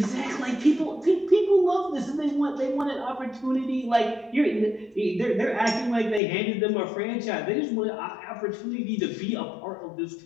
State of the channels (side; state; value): right; drops out; at 6.2 s